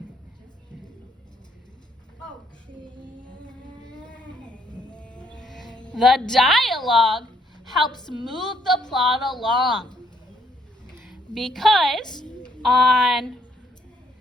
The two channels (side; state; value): both; normal; correlation 0.69